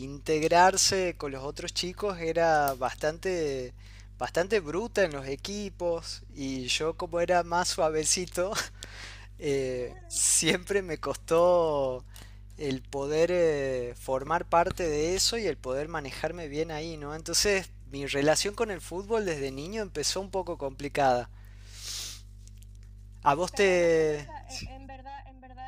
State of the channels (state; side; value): identical; both; correlation 1.00